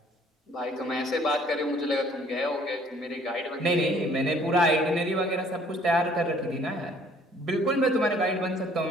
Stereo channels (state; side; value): normal; both; correlation 0.58